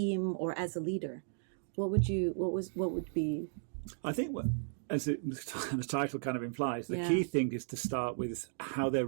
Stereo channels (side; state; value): left; silent; digital silence